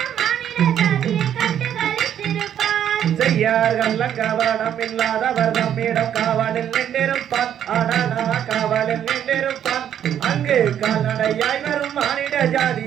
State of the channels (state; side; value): quieter; left; 9.9 dB